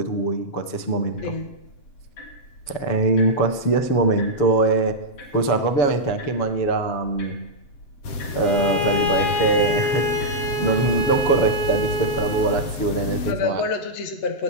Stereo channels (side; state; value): right; late; 7.6 ms